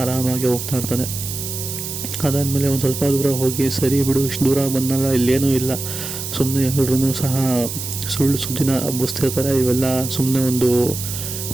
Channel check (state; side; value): noise; right; hiss, 6 dB below the sound